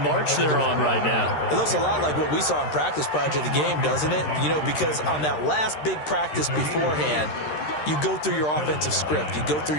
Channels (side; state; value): right; late; 13 ms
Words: they're on right now. It looks a lot like what we saw in practice prior to the game, doesn't it? You know, because on that last big practice beforehand, you go through your offensive script, you go through